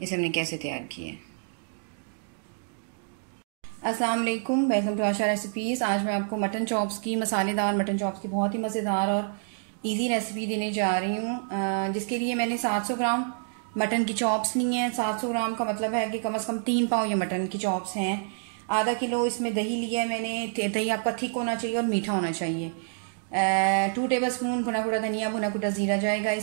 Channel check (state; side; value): silent; left; digital silence